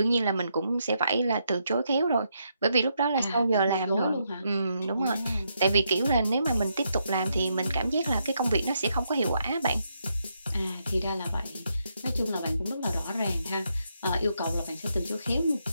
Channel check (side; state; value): both; inverted; correlation -0.79